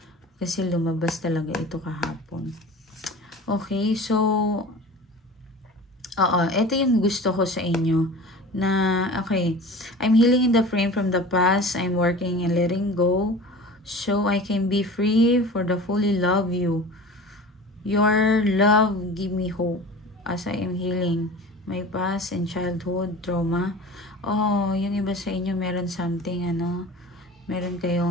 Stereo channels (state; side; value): normal; both; correlation 0.38